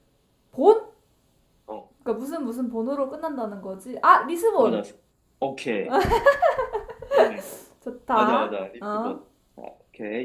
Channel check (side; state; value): both; identical; correlation 1.00